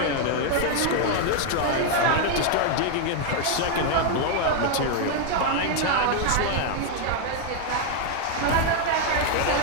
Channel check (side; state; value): both; different; correlation 0.00